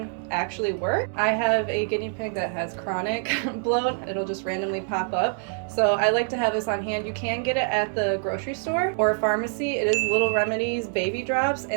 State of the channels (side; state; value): left; silent; 60 dB below the other